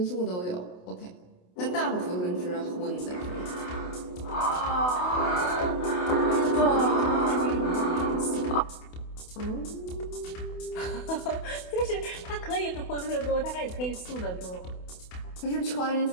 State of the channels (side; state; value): right; late; 28 ms